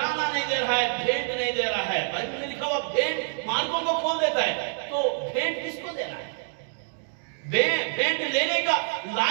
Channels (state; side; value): silent; left; digital silence